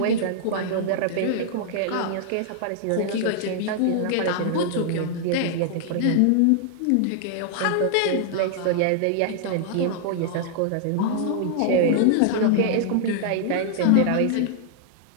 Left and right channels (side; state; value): both; different; correlation -0.01